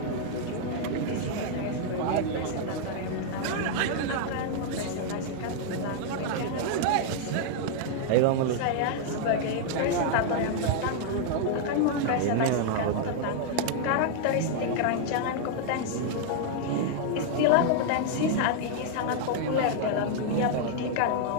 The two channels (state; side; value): different; both; correlation 0.00